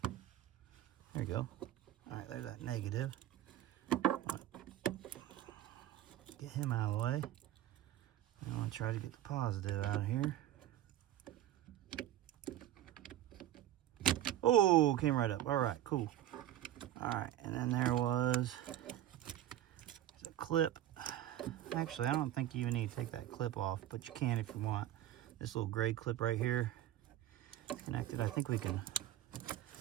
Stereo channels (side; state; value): left; quieter; 12.7 dB